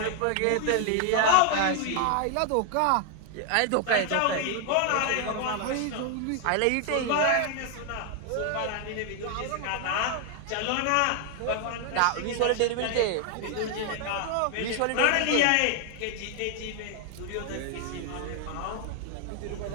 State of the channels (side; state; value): both; different; correlation 0.00